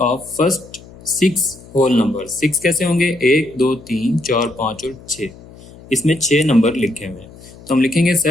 of first 6 whole number. 6 कैसे होंगे? 1, 2, 3, 4, 5 और 6। इसमें 6 नंबर लिखे हुए हैं, तो हम लिखेंगे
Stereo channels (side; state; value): left; noise; hum, 20 dB below the sound